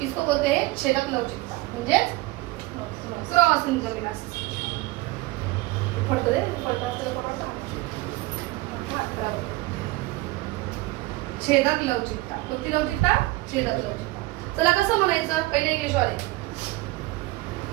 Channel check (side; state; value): left; quieter; 20.8 dB